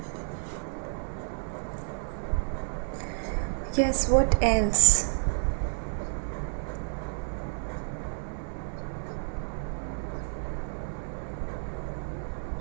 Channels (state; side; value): silent; left; digital silence